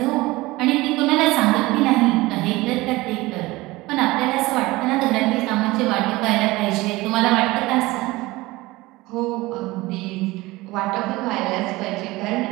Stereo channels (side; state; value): left; quieter; 20.2 dB